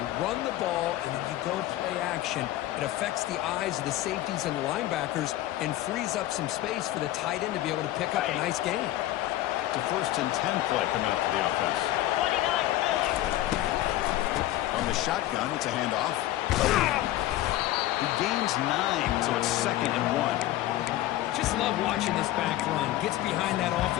You run the ball, and then you go play action. It affects the eyes of the safeties and the linebackers and frees up some space for the tight end to be able to pick up a nice gain. The 1st and 10 play coming up for the offense. On the shotgun, it's a handoff. He gains 9, so it's 2nd and 1. Just love watching this back run. Gets behind that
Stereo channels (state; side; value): quieter; right; 15.0 dB